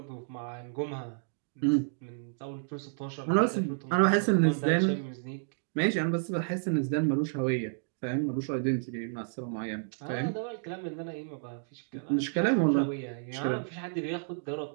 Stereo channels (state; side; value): silent; left; digital silence